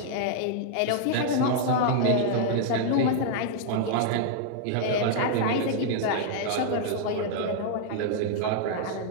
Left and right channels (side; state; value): both; different; correlation -0.01